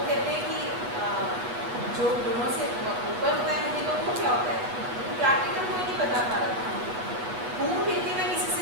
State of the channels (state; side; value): late; left; 7.9 ms